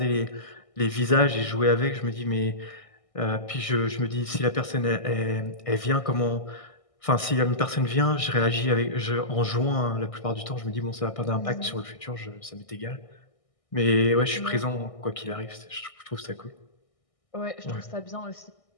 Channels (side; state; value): right; late; 1.6 ms